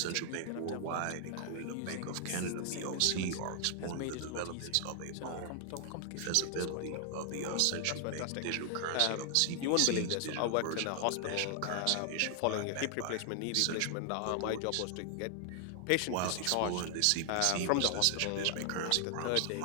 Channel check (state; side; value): different; both; correlation 0.00